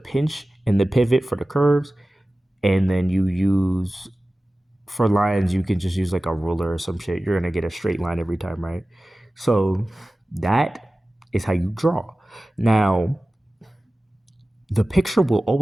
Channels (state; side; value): normal; both; correlation 0.96